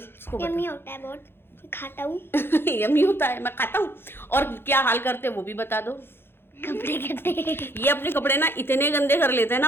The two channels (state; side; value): late; right; 0.11 ms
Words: इसको यम्मी होता है बहुत, खाता हूँ यम्मी होता है, मैं खाता हूँ। और क्या हाल करते हैं वो भी बता दो। कपड़े करते हैं ये अपने कपड़े ना इतने गंदे कर लेते हैं ना,